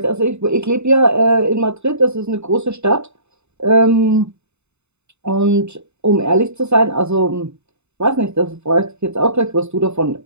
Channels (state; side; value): late; left; 0.82 ms